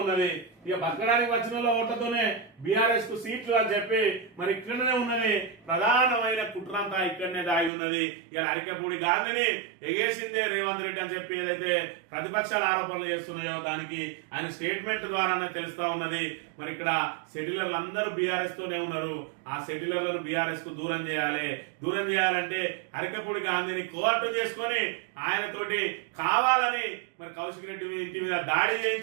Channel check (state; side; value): drops out; left; at 7.7 s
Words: ఉన్నది. ఇక బతకడానికి వచ్చిన ఓట్లతోనే బీఆర్ఎస్ కు సీట్లు అని చెప్పి మరి ఇక్కడనే ఉన్నది. ప్రధానమైన కుట్రంతా ఇక్కడనే దాగి ఉన్నది. ఇలా అరికెపూడి గాంధీని ఎగేసిందే రేవంత్ రెడ్డి అని చెప్పి ఏదైతే ప్రతిపక్షాలు ఆరోపణలు చేస్తున్నాయో దానికి ఆయన స్టేట్మెంట్ ద్వారానే తెలుస్తా ఉన్నది. మరి ఇక్కడ సెటిలర్లు అందరూ బీఆర్ఎస్ తోనే ఉన్నారు. ఆ సెటిలర్లను బీఆర్ఎస్ కు దూరం చేయాలి. దూరం చేయాలంటే అరికెపూడి గాంధీని కోఆర్టు చేసుకొని ఆయనతోటి కావాలని మరి కౌశిక్ రెడ్డి ఇంటి మీద దాడి